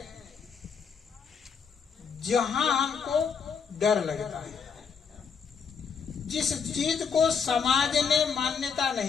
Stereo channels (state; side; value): quieter; right; 6.3 dB